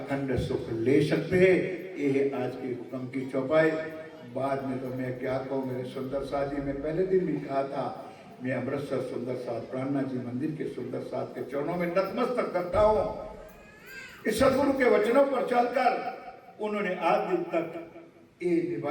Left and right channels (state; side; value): identical; both; correlation 1.00